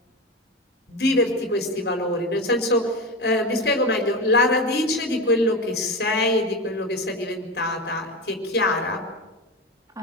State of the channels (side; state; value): both; normal; correlation 0.22